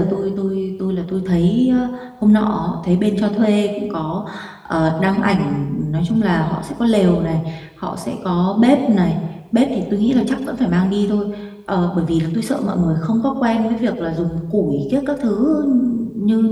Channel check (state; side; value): identical; both; correlation 1.00